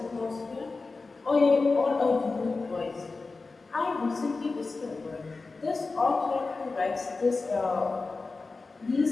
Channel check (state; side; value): quieter; right; 3.8 dB